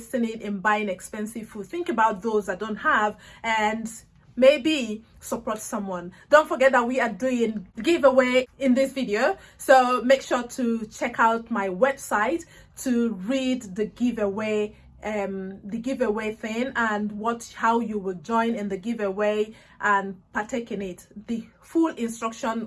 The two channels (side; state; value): both; identical; correlation 1.00